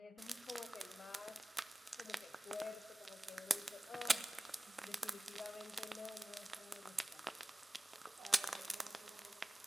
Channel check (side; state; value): both; normal; correlation 0.97